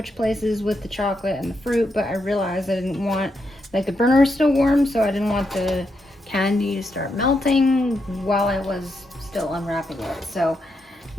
places with the chocolate and the fruit, but I realized I didn't want, like, the burner is still warm, so I didn't want the candy to start melting while I was still unwrapping it. So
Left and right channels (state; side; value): normal; both; correlation 0.82